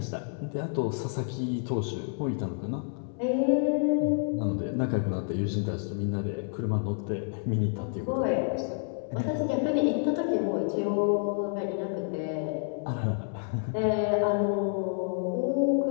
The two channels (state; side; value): silent; right; 57 dB below the other